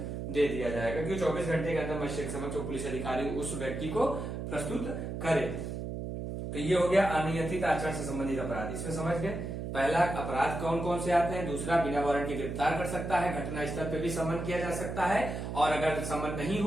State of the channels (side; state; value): right; noise; hum, 5 dB below the sound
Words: दे दिया जाएगा कि 24 घंटे के अंदर मजिस्ट्रेट के समक्ष पुलिस अधिकारी उस व्यक्ति को प्रस्तुत करे। तो ये हो गया अनियंत्रित आचरण से संबंधित अपराध। इसमें समझ गए, पहला अपराध कौन कौन से आते हैं, दूसरा बिना वारंट के गिरफ्तार कर सकता है, घटना स्थल पे भी समन किया जा सकता है, और अगर समन नहीं